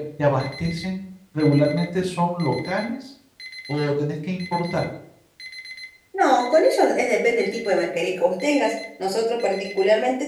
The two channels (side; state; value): both; identical; correlation 1.00